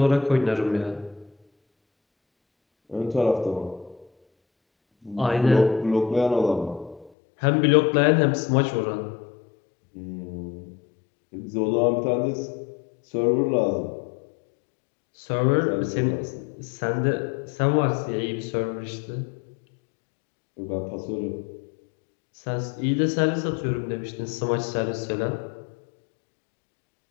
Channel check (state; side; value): drops out; right; at 7.1 s